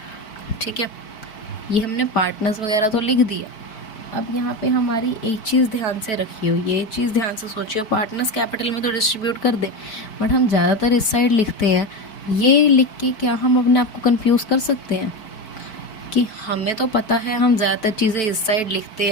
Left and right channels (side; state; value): right; late; 4.6 ms